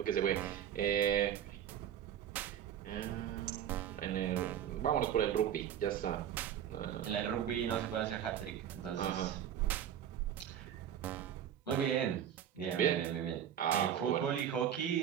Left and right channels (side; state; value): left; quieter; 9.9 dB